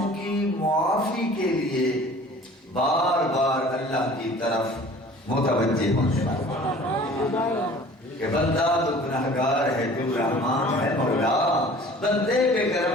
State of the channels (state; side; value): normal; both; correlation 0.47